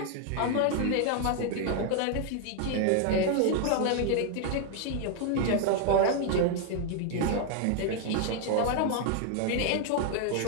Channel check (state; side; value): different; both; correlation 0.00